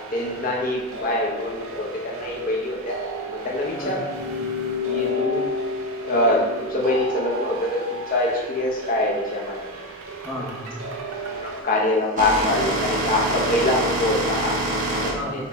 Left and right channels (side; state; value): both; normal; correlation 0.13